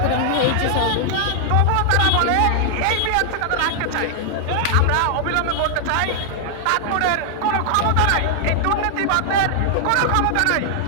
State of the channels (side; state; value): both; different; correlation 0.00